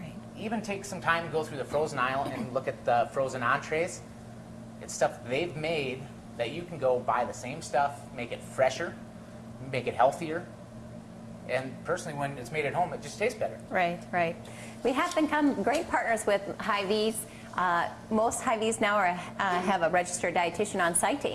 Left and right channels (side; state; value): both; identical; correlation 1.00